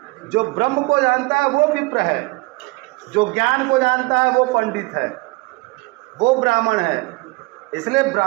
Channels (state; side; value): quieter; left; 25.2 dB